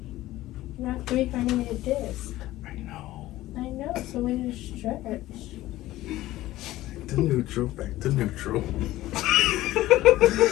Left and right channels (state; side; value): quieter; right; 16.0 dB